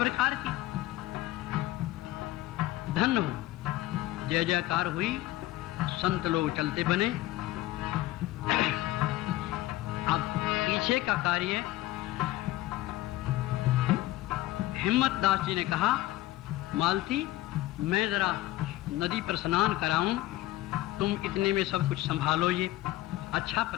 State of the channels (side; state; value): right; quieter; 16.3 dB